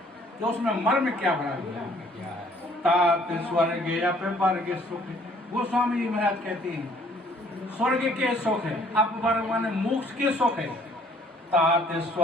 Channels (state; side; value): normal; both; correlation 0.59